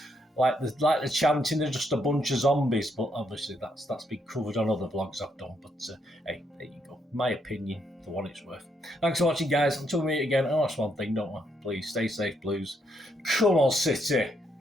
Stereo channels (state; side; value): normal; both; correlation 0.75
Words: Like the chanting, they're just a bunch of zombies, but obviously that's been covered on other vlogs I've done. But hey, there you go. My opinion, for what it's worth. Thanks for watching, guys. Until we meet again, that's one thing, don't I? Please stay safe, Blues. Come on, City.